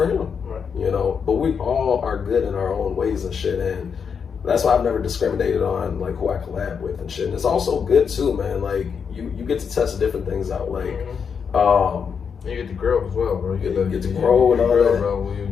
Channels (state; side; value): quieter; right; 6.5 dB